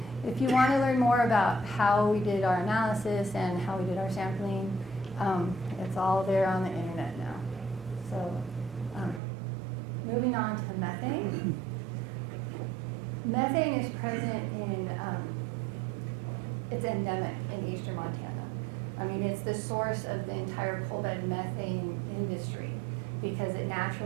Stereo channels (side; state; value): left; drops out; at 9.2 s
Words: If you want to learn more about how we did our analysis and how we did our sampling, it's all there on the internet now. So moving on to methane. Methane is present in, it's endemic in eastern Montana. I mean, it's the source of the entire coal bed methane industry because it